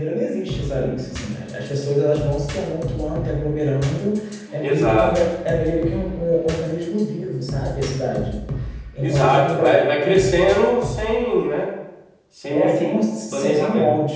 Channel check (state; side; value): identical; both; correlation 1.00